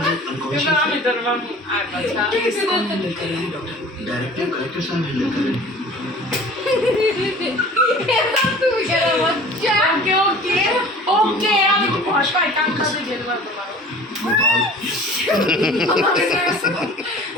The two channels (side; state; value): both; normal; correlation 0.44